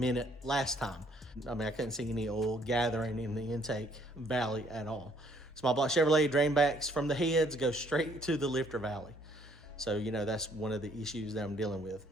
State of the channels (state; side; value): normal; both; correlation 0.64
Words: last time. I mean, I couldn't see any oil gathering in the intake valley at all. Small block Chevrolet drain backs from the heads go straight to the lifter valley. So, you know, that's one of the issues that I'm dealing with.